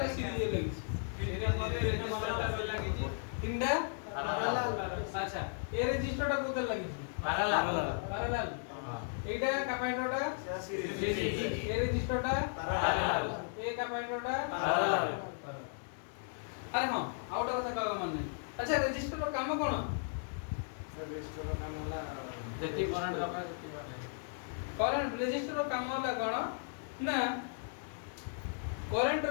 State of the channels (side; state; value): right; silent; digital silence